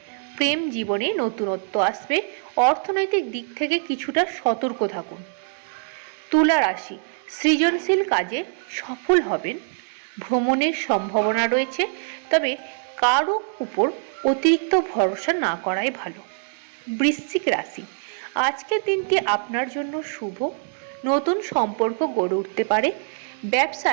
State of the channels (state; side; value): silent; left; 63 dB below the other